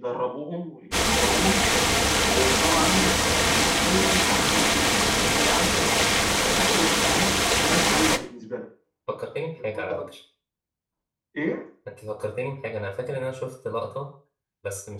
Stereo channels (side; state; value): both; identical; correlation 1.00